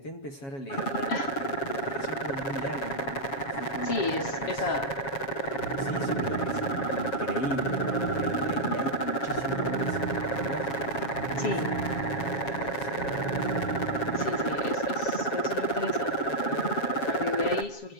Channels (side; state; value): right; late; 7.3 ms